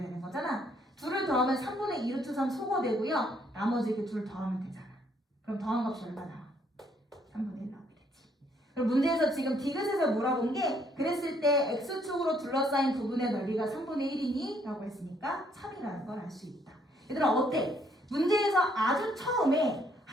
되는 거잖아. 둘을 더하면 3분의 2루트 3 소거되고요. 나머지 이렇게 둘 더하면 되잖아. 그럼 더한 값이 얼마 나와? 3분의 1 나오게 되지. 그럼 문제에서 지금 디귿에서 물어본 게 그랬을 때 x축으로 둘러싸인 부분의 넓이가 3분의 1이니? 라고 했으니까 3이라는 걸 알 수 있다. 얘들아 어때? 문제에서 아주 처음에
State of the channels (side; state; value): both; normal; correlation 0.67